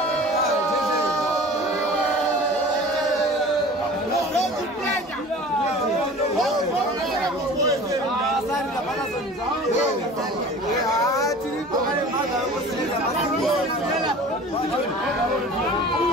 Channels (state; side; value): normal; both; correlation 0.41